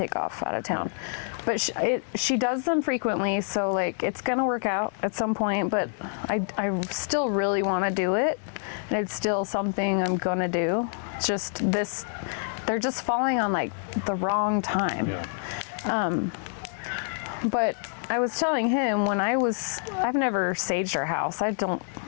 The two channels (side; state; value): right; silent; digital silence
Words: off out of town. No. But she does them frequently, so like it's gonna work out at some point. But I still really want to do it, and it's still something I'm gonna do. It's just this, they're just falling on like the wrong time. Yeah. But I was telling him I've never saged our house. I don't